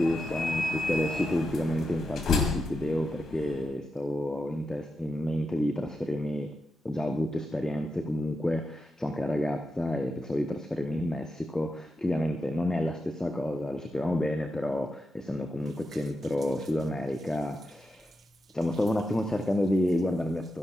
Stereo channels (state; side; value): normal; both; correlation 0.87